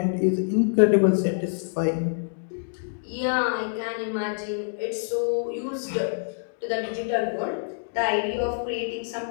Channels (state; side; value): silent; right; digital silence